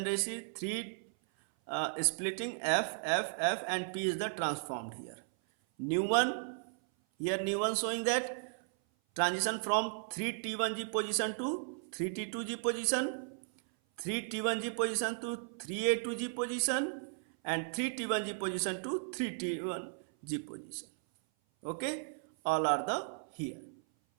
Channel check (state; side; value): silent; left; 54 dB below the other